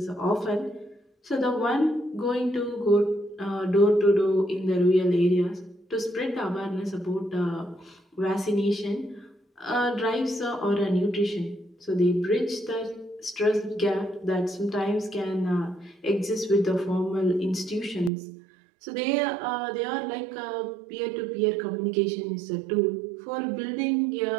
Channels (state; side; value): drops out; left; at 18.1 s